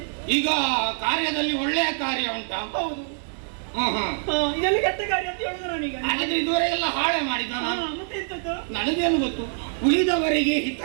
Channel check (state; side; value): silent; left; 62 dB below the other